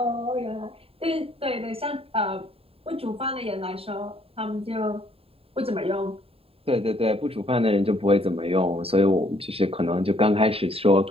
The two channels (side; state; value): left; late; 0.27 ms